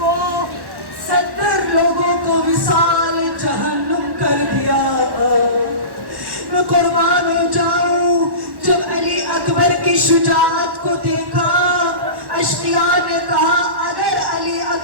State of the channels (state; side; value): late; left; 1.1 ms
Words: وصال جہنم کر دیا۔ میں قربان ہو جاؤں، جب علی اکبر کی شجاعت کو دیکھا، اشقیاء نے کہا اگر علی